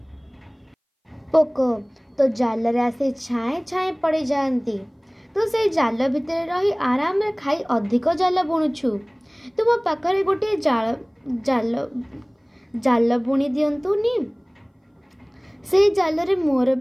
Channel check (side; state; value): both; identical; correlation 1.00